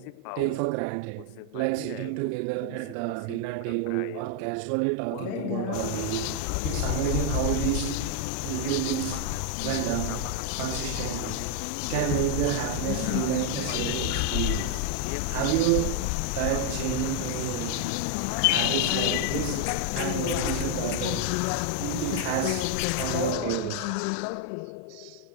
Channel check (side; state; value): both; different; correlation 0.00